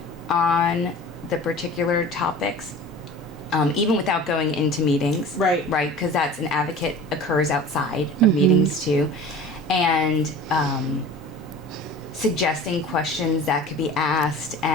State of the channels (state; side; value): normal; both; correlation 0.40